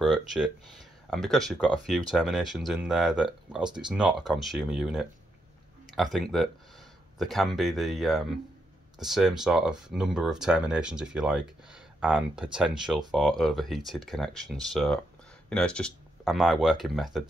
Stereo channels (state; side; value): normal; both; correlation 0.80